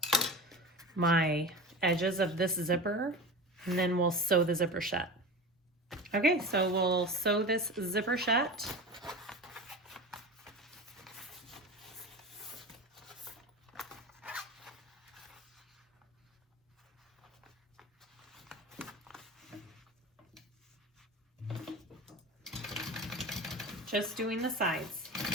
my edges of this zipper, and then we'll sew the zipper shut. Okay, so we'll sew this zipper shut. Just doing the sides.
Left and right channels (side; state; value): both; normal; correlation 0.30